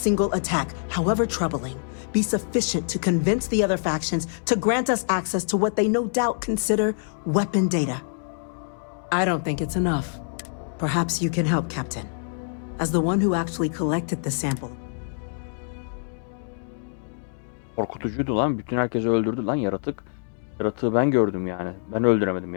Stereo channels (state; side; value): silent; right; digital silence